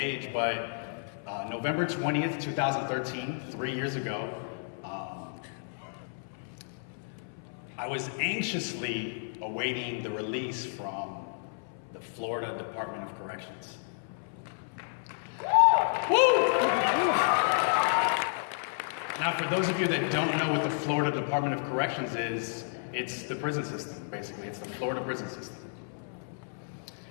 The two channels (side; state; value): right; silent; 57 dB below the other